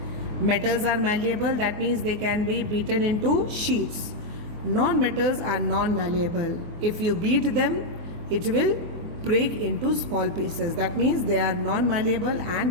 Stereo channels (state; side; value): late; left; 24 ms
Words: Metals are malleable, that means they can be beaten into sheets. Non-metals are non-malleable. If you beat them, it will break into small pieces. That means they are non-malleable and